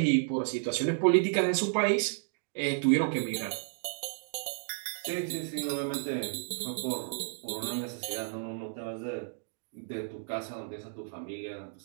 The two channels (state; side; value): silent; left; digital silence